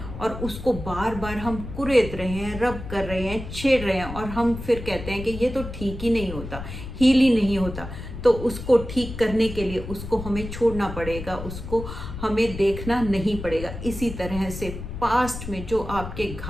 और उसको बार बार हम कुरेद रहे हैं, रब कर रहे हैं, छेड़ रहे हैं, और हम फिर कहते हैं कि ये तो ठीक ही नहीं होता, हील ही नहीं होता। तो उसको ठीक करने के लिए उसको हमें छोड़ना पड़ेगा, उसको हमें देखना नहीं पड़ेगा। इसी तरह से पास्ट में जो आपके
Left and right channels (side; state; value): left; noise; rumble, 9 dB below the sound